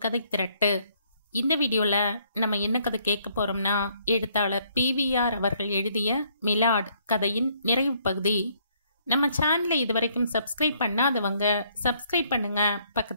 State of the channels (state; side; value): inverted; both; correlation -0.67